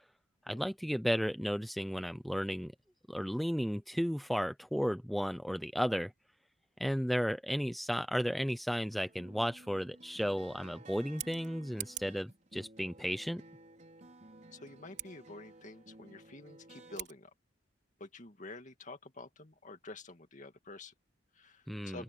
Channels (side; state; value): both; normal; correlation 0.97